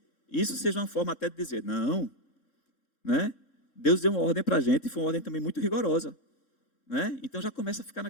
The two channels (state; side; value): late; right; 3.7 ms